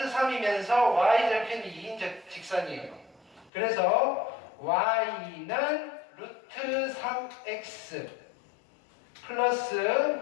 3이면서 y절편이 2인 직선이에요. 그래서 y는 루트 3x 플러스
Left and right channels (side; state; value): right; drops out; at 3.5 s